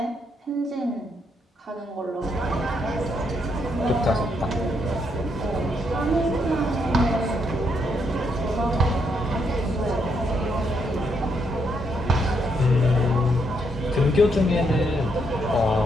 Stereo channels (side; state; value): both; normal; correlation 0.76